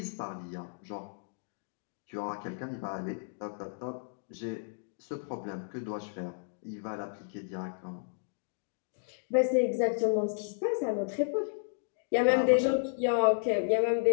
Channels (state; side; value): silent; right; digital silence